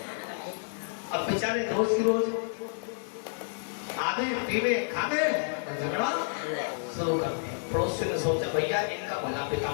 अब बेचारे रोज की रोज आधे पीवे खावे और झगड़ा शुरू कर दिया। पड़ोसी ने सोचा भैया इनका भला पिता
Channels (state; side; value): silent; right; digital silence